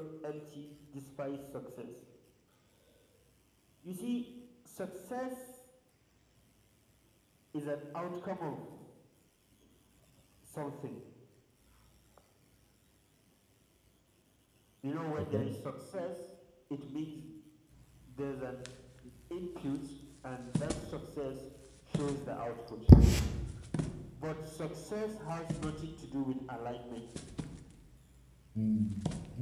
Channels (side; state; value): both; identical; correlation 1.00